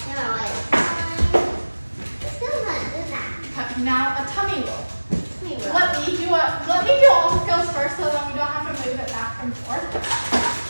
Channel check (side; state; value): both; inverted; correlation -1.00